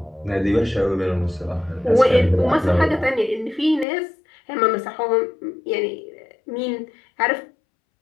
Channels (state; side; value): drops out; right; at 3.9 s